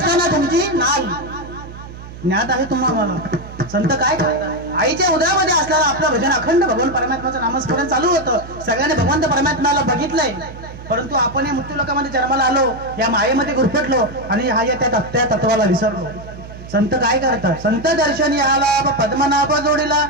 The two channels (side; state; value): right; noise; hum, 14 dB below the sound